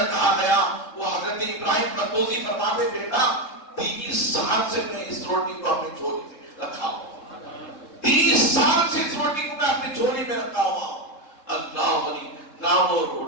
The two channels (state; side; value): late; right; 3.7 ms